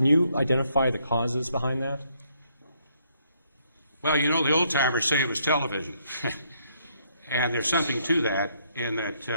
you identify the causes behind that? Well, you know, the old-timers say it was television. And there's something to that in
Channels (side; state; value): both; inverted; correlation -0.71